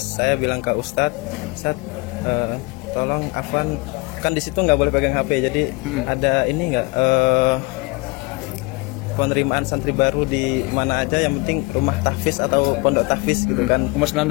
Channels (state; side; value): quieter; right; 26.3 dB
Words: saya bilang ke Ustadz, tolong Afwan, kan di situ nggak boleh pegang HP, jadi ada ini nggak penerimaan santri baru di mana aja, yang penting rumah tahfiz atau pondok tahfiz gitu kan. Umur